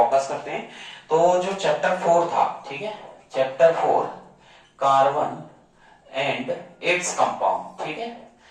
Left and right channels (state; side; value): identical; both; correlation 1.00